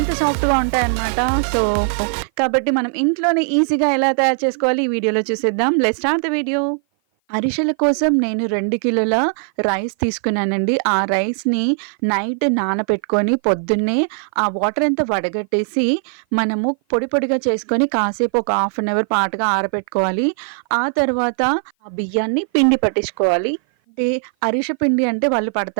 సాఫ్ట్‌గా ఉంటాయన్నమాట. సో, కాబట్టి మనం ఇంట్లోనే ఈజీగా ఎలా తయారు చేసుకోవాలి ఈ వీడియోలో చూసేద్దాం. Let's start the video. అరిసెల కోసం నేను 2 కిలోల రైస్ తీసుకున్నానండి. ఆ రైస్‌ని నైట్ నానబెట్టుకొని పొద్దున్నే ఆ వాటర్ అంతా వడగట్టేసి మనము పొడి పొడిగా చేసుకొని కాసేపు ఒక హాఫ్ అన్ అవర్ పాటుగా ఆరబెట్టుకోవాలి. ఆ తర్వాత ఆ బియ్యాన్ని పిండి పట్టించుకోవాలి. అంటే అరిసె పిండి అంటే వాళ్ళు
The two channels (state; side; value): silent; left; 55 dB below the other